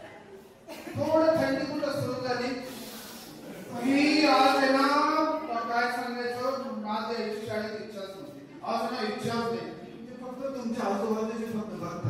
थोडं थंडी कुठं सुरू झाली ही आज आहे ना, काय सांगायचं, माझ्या शाळेत इच्छाच नव्हती. आज ना इच्छाच नाही, ते फक्त तुमच्या आजूबाजूचे फक्त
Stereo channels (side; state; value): both; identical; correlation 1.00